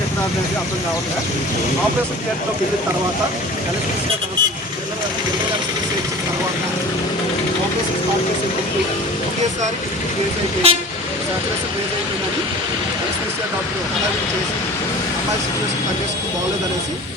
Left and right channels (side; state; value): both; normal; correlation 0.40